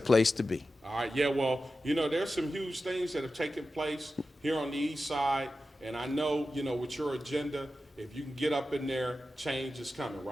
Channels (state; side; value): normal; both; correlation 0.92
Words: to be. All right, yeah, well, there's some huge things that have taken place here on the east side, and I know, with your agenda, if you can get up in there, change is coming,